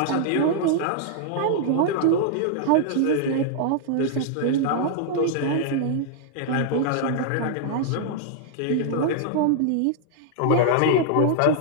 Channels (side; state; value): both; different; correlation -0.01